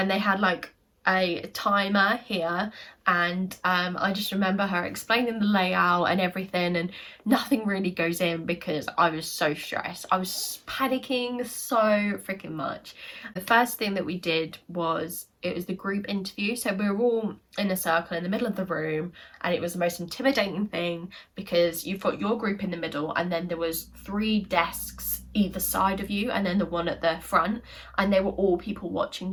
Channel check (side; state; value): both; identical; correlation 1.00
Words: they had like a timer here, and I just remember her explaining the layout and everything, and nothing really goes in because I was so stressed. I was panicking so freaking much. The first thing that we did was, it was the group interview. So we were all in a circle in the middle of the room, and it was the most intimidating thing because you've got your group in the middle, and then there was 3 desks either side of you, and then the one at the front, and they were all people watching